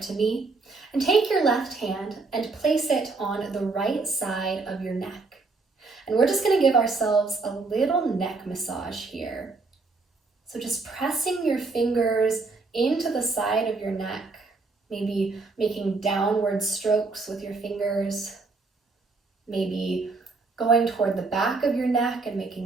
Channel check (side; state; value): left; quieter; 3.9 dB